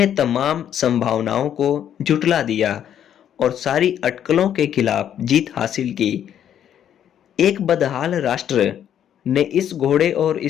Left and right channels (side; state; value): right; quieter; 9.8 dB